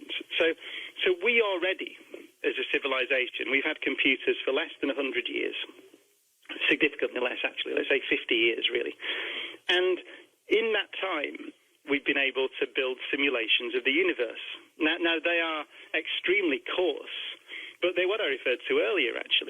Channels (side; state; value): both; identical; correlation 1.00